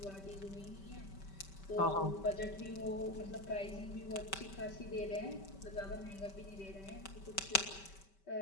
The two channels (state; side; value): late; right; 5.2 ms